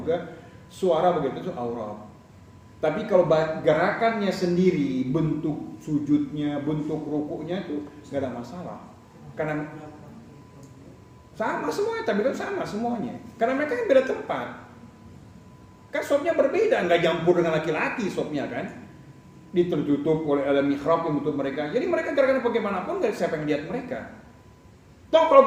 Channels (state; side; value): identical; both; correlation 1.00